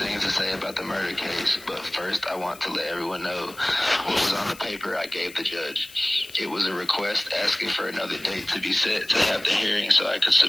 to say about the murder case, but first I want to let everyone know what was on the paper I gave the judge. It was a request asking for another date to be set to have the hearing so I could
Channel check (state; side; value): noise; left; hiss, 19 dB below the sound